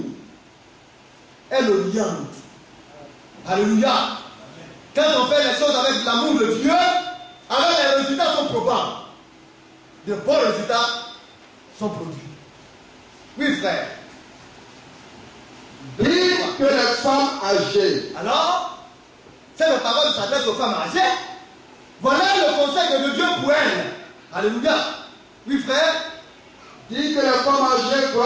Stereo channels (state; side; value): identical; both; correlation 1.00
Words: Elle l'oriente. Alléluia. Quand on fait les choses avec l'amour de Dieu, alors les résultats sont probables. De bons résultats sont produits. Oui, frère. Dites que les femmes âgées. Alors, c'est la parole qui s'adresse aux femmes âgées. Voilà le conseil de Dieu pour elles. Alléluia. Oui, frère. Dit que les femmes âgées